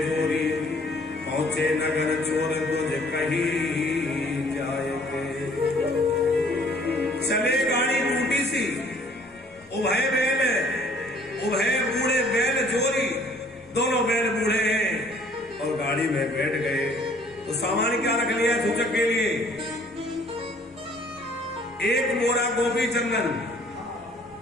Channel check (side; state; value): both; normal; correlation 0.58